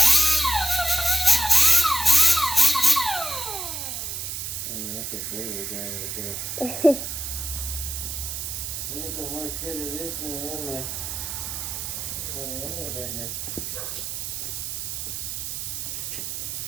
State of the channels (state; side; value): noise; right; hiss, 4 dB below the sound